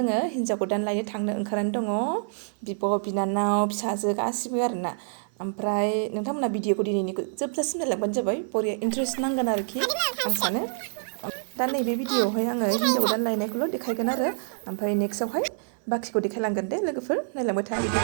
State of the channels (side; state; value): left; silent; 57 dB below the other